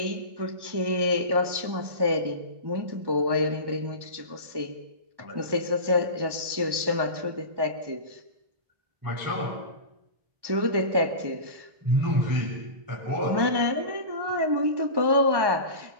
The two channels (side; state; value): left; late; 1.2 ms